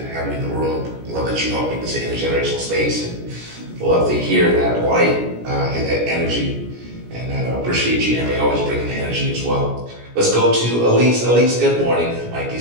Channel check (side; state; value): left; late; 17 ms